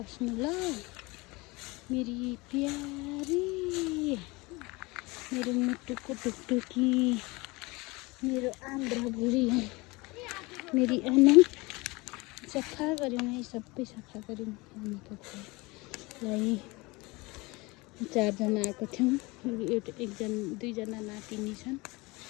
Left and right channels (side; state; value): right; quieter; 24.1 dB